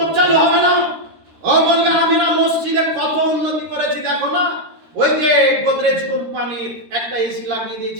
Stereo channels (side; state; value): left; late; 13 ms